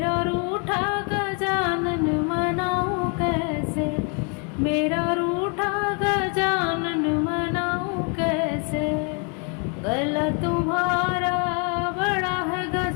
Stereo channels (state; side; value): quieter; right; 37.4 dB